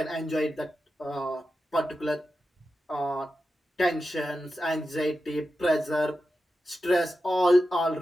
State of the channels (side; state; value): both; normal; correlation 0.91